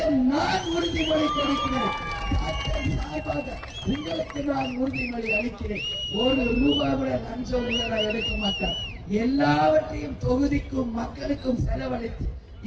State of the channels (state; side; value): identical; both; correlation 1.00